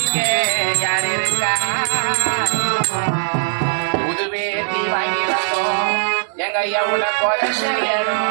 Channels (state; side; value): silent; left; digital silence